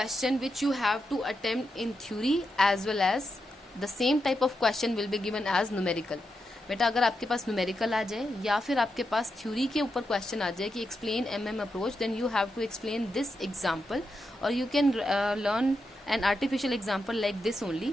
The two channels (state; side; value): normal; both; correlation 0.86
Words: which you have to attempt in theory as well as the same type of question will be given as numerical. बेटा अगर आपके पास numerical आ जाए या फिर आपके पास theory के ऊपर question आ जाए कि explain approach, then you have to explain this example और you can learn an artificial example like this only.